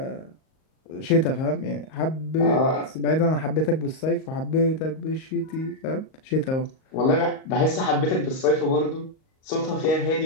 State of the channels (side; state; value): right; late; 38 ms